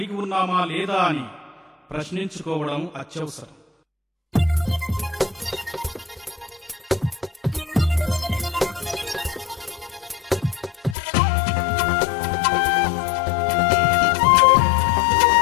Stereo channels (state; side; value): drops out; right; at 11.0 s